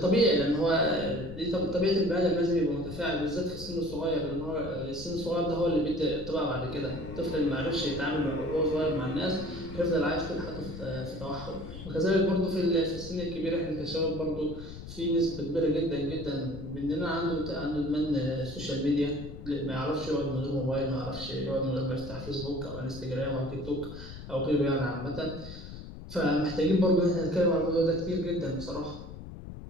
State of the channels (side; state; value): left; noise; rumble, 12 dB below the sound